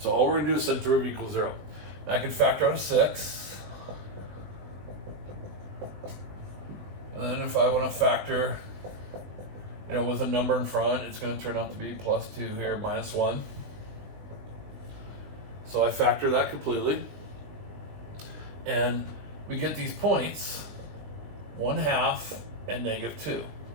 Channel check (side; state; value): left; late; 20 ms